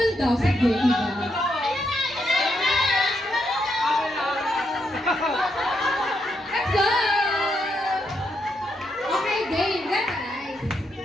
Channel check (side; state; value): both; normal; correlation 0.80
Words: daw. Sige, iba. Let's go! Okay, game. Let's guys.